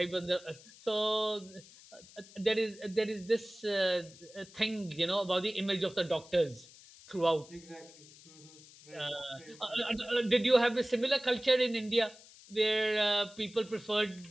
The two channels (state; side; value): noise; left; hiss, 21 dB below the sound